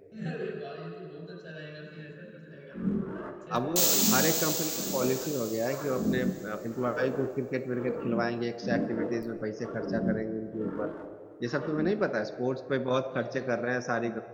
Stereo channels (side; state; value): both; identical; correlation 1.00